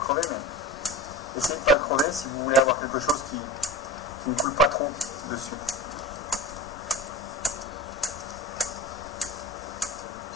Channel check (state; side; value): normal; both; correlation 0.33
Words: mais essayez de ne pas le crever si vous voulez avoir quelque chose qui ne coule pas trop dessus.